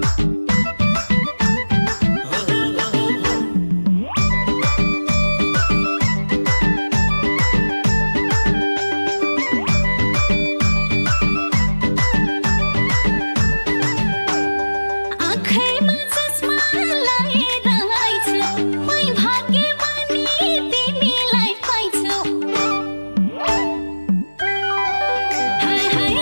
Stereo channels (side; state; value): both; inverted; correlation -1.00